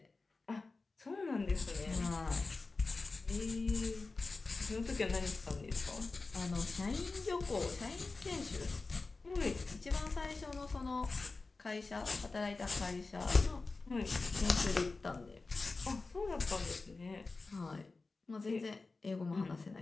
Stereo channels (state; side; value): quieter; right; 3.7 dB